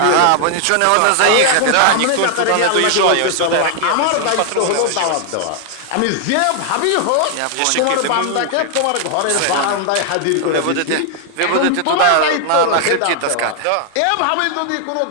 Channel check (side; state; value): both; different; correlation 0.00